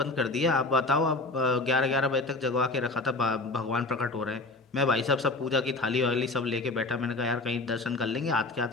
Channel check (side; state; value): right; quieter; 3.2 dB